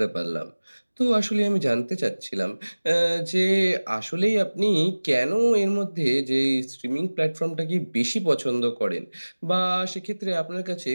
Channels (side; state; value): both; inverted; correlation -1.00